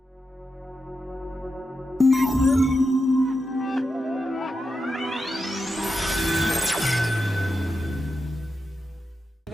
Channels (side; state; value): both; normal; correlation 0.88